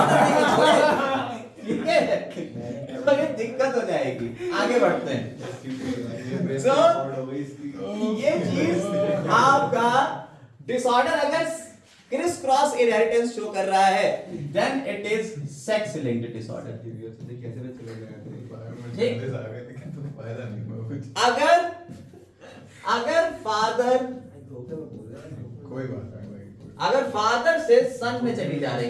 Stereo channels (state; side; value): identical; both; correlation 1.00